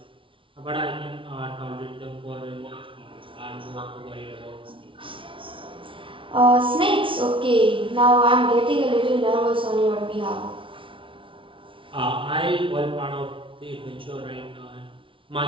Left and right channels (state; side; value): late; left; 0.25 ms